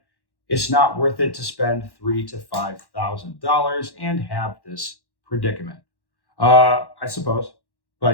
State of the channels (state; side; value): late; right; 1.1 ms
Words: It's not worth it to spend $3,000 to $5,000 and have this predicament. I suppose,